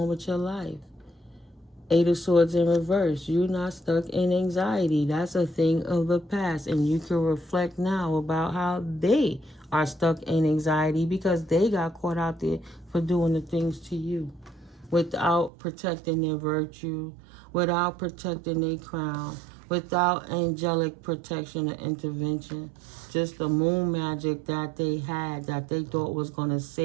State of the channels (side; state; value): left; drops out; at 15.5 s